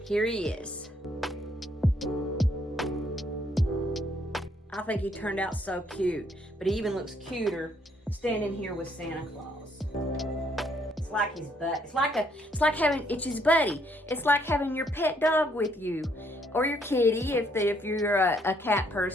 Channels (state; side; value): normal; both; correlation 0.69